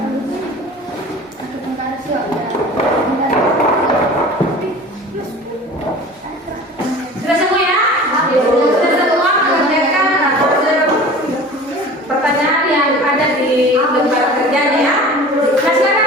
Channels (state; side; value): normal; both; correlation 0.40